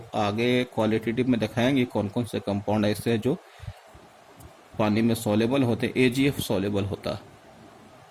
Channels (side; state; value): both; identical; correlation 1.00